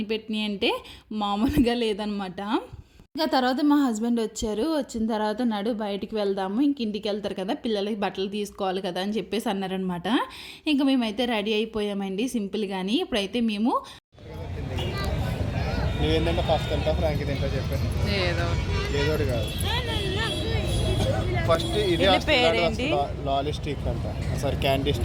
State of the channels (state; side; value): identical; both; correlation 1.00